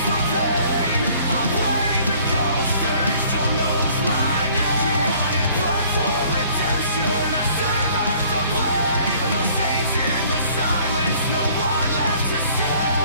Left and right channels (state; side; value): inverted; both; correlation -0.56